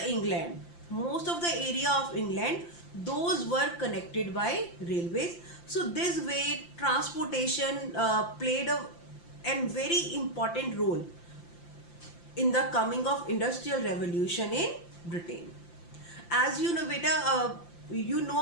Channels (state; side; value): late; right; 5.8 ms